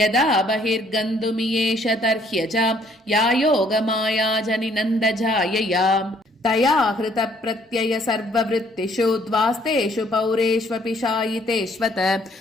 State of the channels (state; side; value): normal; both; correlation 0.64